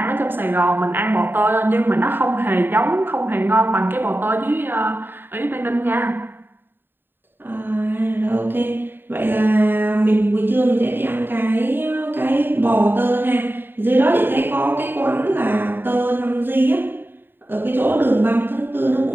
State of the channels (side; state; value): left; late; 0.096 ms